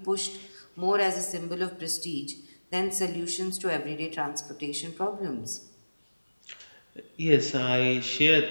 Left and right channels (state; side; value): inverted; both; correlation -1.00